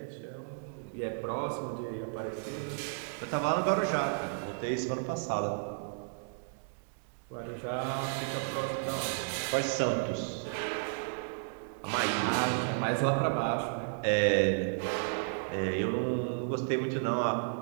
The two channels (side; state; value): left; silent; digital silence